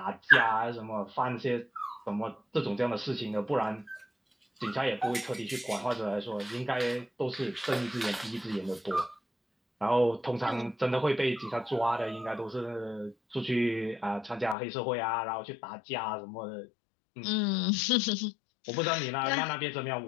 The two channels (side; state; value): right; drops out; at 14.6 s